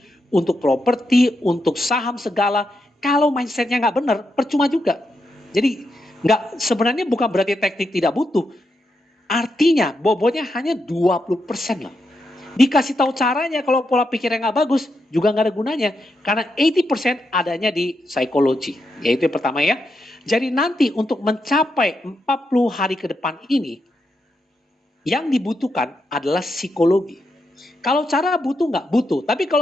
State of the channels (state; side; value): normal; both; correlation 0.84